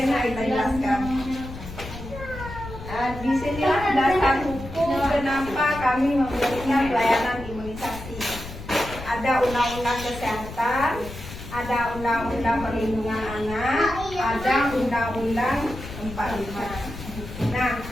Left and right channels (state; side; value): noise; left; rumble, 12 dB below the sound